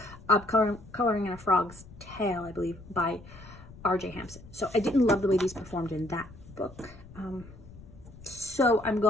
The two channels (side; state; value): left; noise; rumble, 19 dB below the sound